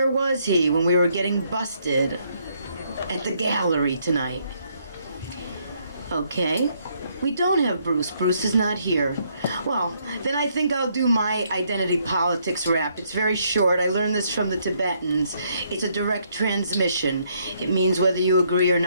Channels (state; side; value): inverted; both; correlation -0.71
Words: was he when we were getting busted at the gallery tonight? Okay. We don't have Bruce. Bruce is not here. Well, then I think I'll do my identity politics rap. It's very short. I learned this from the Tibetans. It's a direct transmission. It means whether you agree or